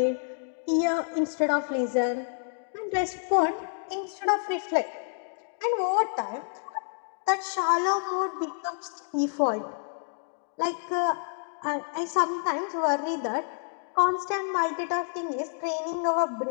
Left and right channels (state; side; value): silent; right; 59 dB below the other